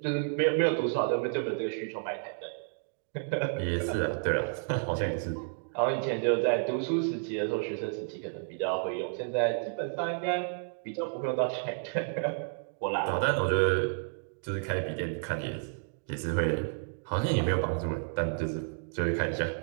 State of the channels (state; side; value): silent; left; digital silence